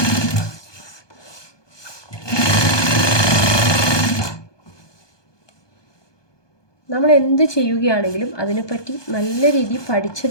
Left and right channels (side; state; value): right; late; 1.2 ms